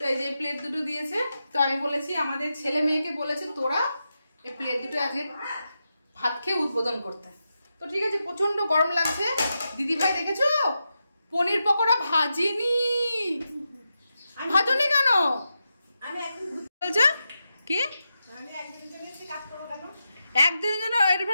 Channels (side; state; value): both; inverted; correlation -0.88